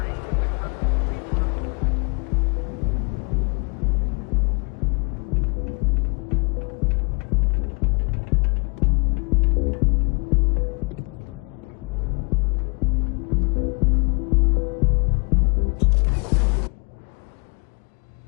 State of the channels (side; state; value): right; quieter; 36.0 dB